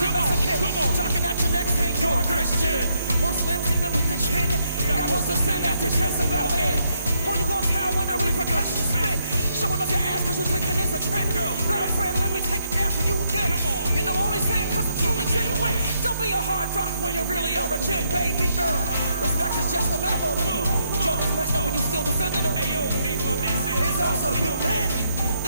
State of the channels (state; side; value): inverted; both; correlation -0.75